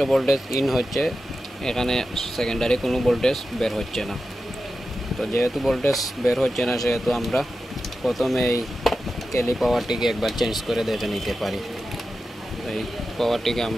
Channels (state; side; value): normal; both; correlation 0.92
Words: ভোল্টেজ ইন হচ্ছে, এখানে সেকেন্ডারি কোনো ভোল্টেজ বের হচ্ছে না। তো যেহেতু ভোল্টেজ বের হচ্ছে না, সেহেতু আমরা প্রথমে এই ক্যালি পাওয়ারটিকে একবার চেঞ্জ করে দেখে নিতে পারি। এই পাওয়ারটিকে